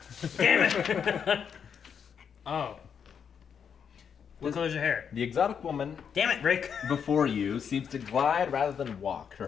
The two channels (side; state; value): right; quieter; 7.3 dB